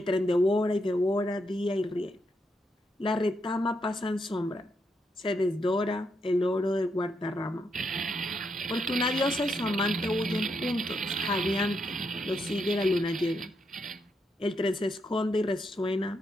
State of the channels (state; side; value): normal; both; correlation 0.80